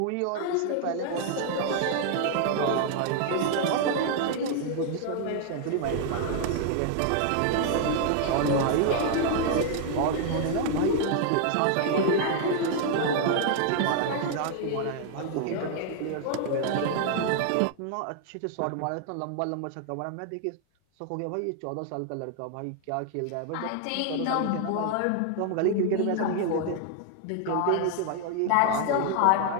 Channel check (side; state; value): both; different; correlation 0.00